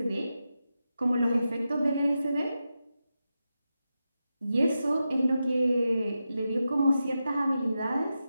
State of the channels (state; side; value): inverted; both; correlation -0.90